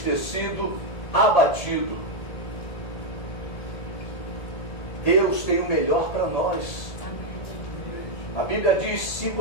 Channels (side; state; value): right; late; 1.7 ms